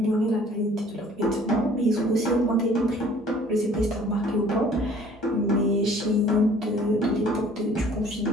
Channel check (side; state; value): both; normal; correlation 0.54